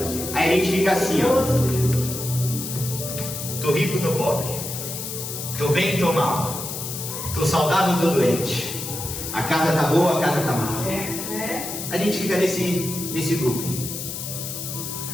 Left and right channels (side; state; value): left; noise; hiss, 6 dB below the sound